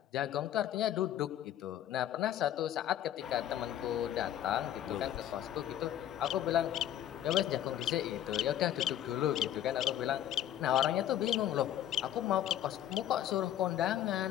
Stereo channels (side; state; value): right; quieter; 11.5 dB